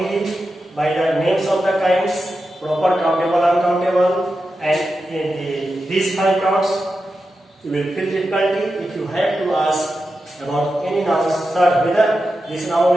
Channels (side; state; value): both; normal; correlation 0.90